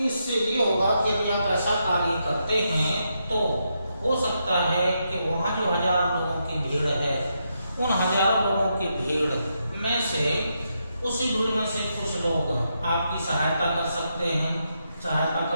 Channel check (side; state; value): both; inverted; correlation -0.82